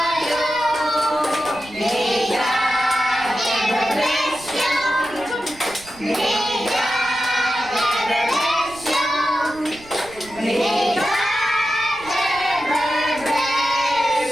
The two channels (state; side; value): noise; right; rumble, 22 dB below the sound